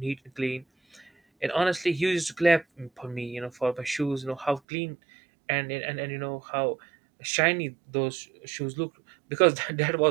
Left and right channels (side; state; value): left; drops out; at 4.6 s